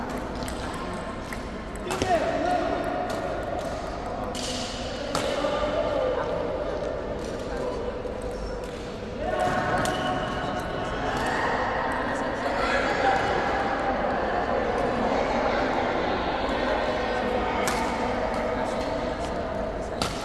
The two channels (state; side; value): identical; both; correlation 1.00